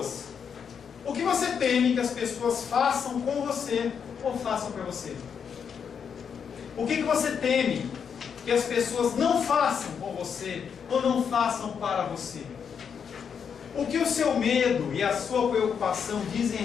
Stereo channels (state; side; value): quieter; right; 7.0 dB